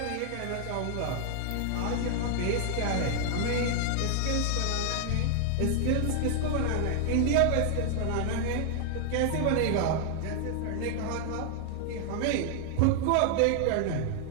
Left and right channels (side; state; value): both; different; correlation 0.00